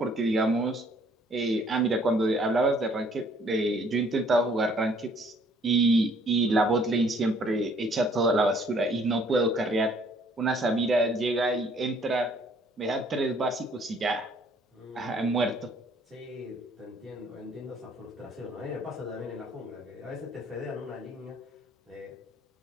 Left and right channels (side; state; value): both; normal; correlation 0.61